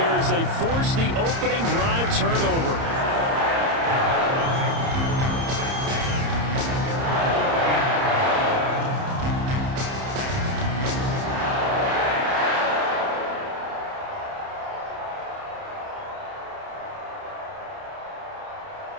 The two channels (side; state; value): left; late; 30 ms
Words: as they force the opening drive turnover.